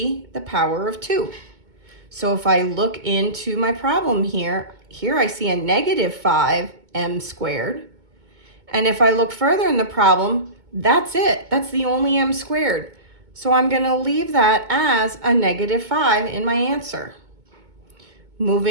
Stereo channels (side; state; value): left; late; 2.2 ms